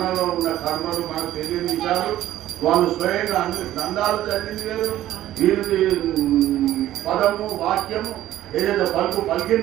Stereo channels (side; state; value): left; quieter; 13.6 dB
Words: ఉన్న కర్మలు మనకు తెలియని విషయాలు వాళ్ళు స్వయంగా అన్ని గ్రంథాలు చదివింది వేరు, వీరి పదము వాక్యము ఏదైతే పలుకు